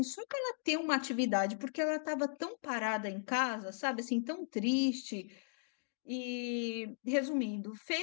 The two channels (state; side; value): silent; right; digital silence